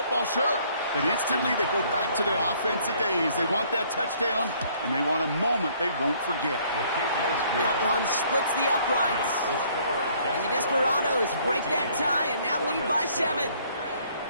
sure, but instantly they go back to their offensive days. They want that touchdown, and they want a moment they won't forget. That one splits the uprights. And the Desperados break that tie and now lead by 7.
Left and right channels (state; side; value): inverted; both; correlation -0.62